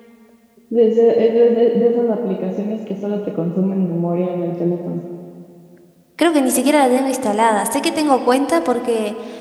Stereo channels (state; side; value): identical; both; correlation 1.00